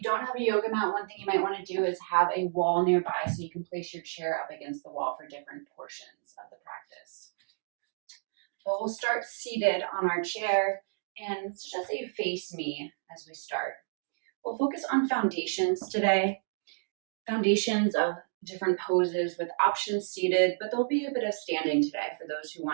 don't have a yoga mat, one thing you might want to do is have a wall nearby so you can place your chair up against the wall for different portions of the practice. But we'll start seated on our chair, and suggest that you face me as we start. We'll focus on foundations today, foundations of different poses with options seated, but there'll be a bit of standing today for those who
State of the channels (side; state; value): left; silent; digital silence